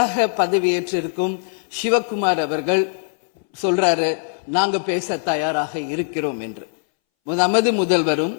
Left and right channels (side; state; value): right; silent; 62 dB below the other